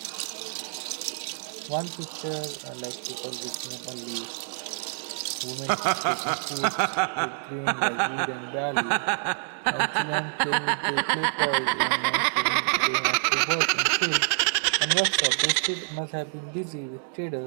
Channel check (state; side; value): silent; left; digital silence